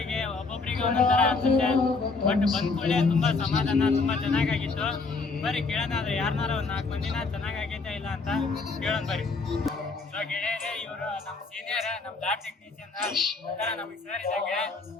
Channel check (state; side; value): quieter; right; 4.1 dB